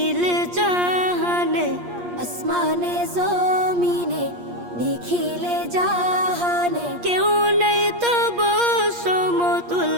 জাহানে, আসমানে জমিনে নিখিলে জাহানে, কেউ নেই তব সমতুল।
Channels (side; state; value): left; late; 8.5 ms